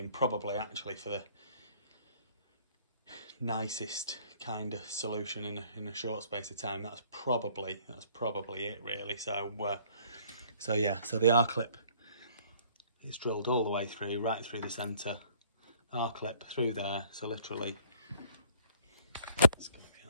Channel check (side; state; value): both; inverted; correlation -0.57